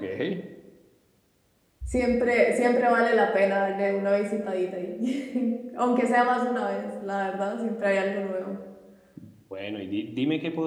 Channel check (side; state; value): both; identical; correlation 1.00